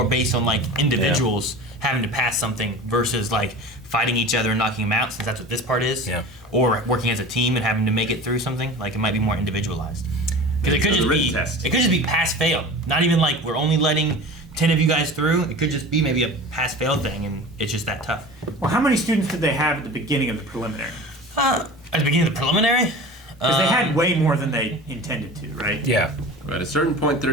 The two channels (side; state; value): both; normal; correlation 0.36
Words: based on like individuals having to pass something versus like fighting each other and knocking them out, since that's what this part is. Yeah. Or working as a team and having to make it through something. Like it might be more individualized. Because it could So the just written be test. it could just be pass fail. Not even like we're only letting 10 of you guys through. It could just be maybe a pass fail thing, and it's just that tough. Well, how many students did they have at the beginning of the preliminary? At the beginning of the preliminary. Because they had way more than they intended to, right? Yeah. But at a certain point,